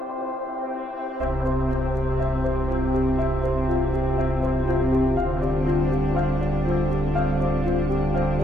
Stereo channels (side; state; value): both; normal; correlation 0.74